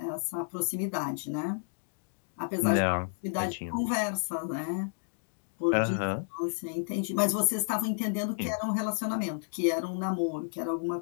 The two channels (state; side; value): silent; right; digital silence